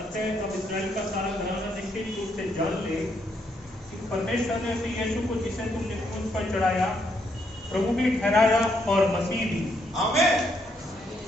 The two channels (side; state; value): both; normal; correlation 0.75